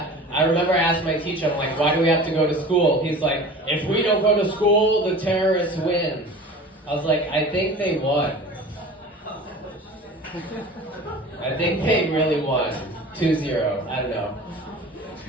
I remember I asked my teacher, I'm like, why do we have to go to school? He's like, if we don't go to school, the terrorists win. I was like, I think they won. I think they really won. 2-0. I don't know.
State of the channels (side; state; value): both; normal; correlation 0.39